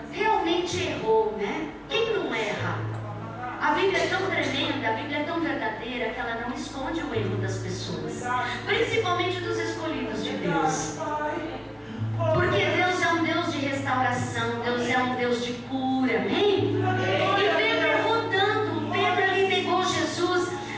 realmente errou, né? Quem não erra? A Bíblia é tão tremenda, a Bíblia é tão verdadeira que ela não esconde o erro das pessoas, principalmente dos escolhidos de Deus. Porque Deus é um Deus de restauração, Deus é um Deus de cura, amém? E Pedro errou tanto, Pedro ali negou Jesus,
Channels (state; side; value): identical; both; correlation 1.00